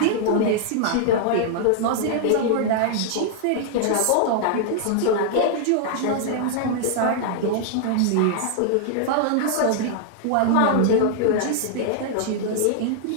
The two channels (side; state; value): both; different; correlation -0.01